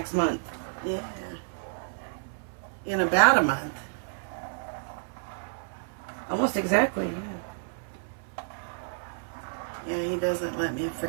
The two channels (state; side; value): silent; left; 58 dB below the other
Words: month. Yeah. In about a month. Almost exactly, yeah. Yeah, he doesn't let me